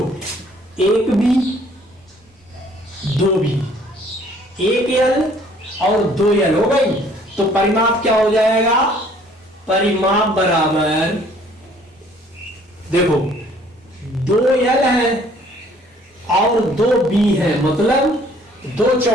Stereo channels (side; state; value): both; normal; correlation 0.58